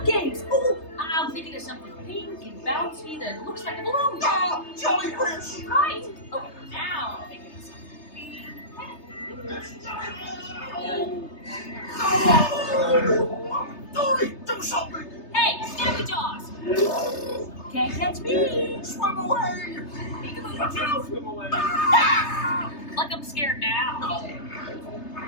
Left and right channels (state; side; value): late; right; 3.3 ms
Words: games. Oh, I'm thinking of something pink and bouncy that looks like a balloon. Ah, jellyfish. Right. Okay, now I'm thinking of something. Dory, do something. Hey, Snappy Jaws. Can't catch me. Swim away. Peekaboo. Swim away. Like I'm scared now.